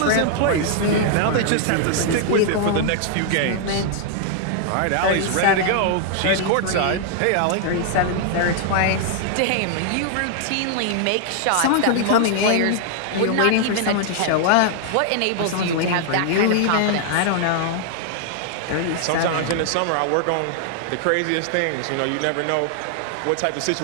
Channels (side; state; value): both; different; correlation 0.00